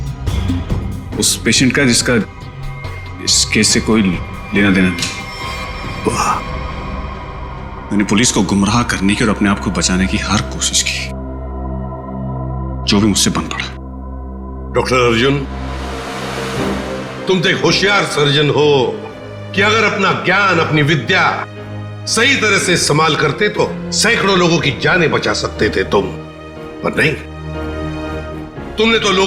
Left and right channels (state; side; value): identical; both; correlation 1.00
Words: उस पेशेंट का जिसका इस केस से कोई लेना देना नहीं। वाह, मैंने पुलिस को गुमराह करने की और अपने आप को बचाने की हर कोशिश की, जो भी मुझसे बन पड़ा। डॉक्टर अर्जुन, तुम तो एक होशियार सर्जन हो कि अगर अपना ज्ञान, अपनी विद्या सही तरह से इस्तेमाल करते तो सैकड़ों लोगों की जानें बचा सकते थे तुम, पर नहीं, तुमने तो